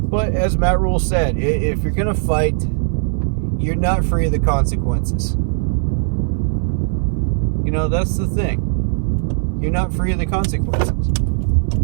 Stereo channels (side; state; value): left; silent; 67 dB below the other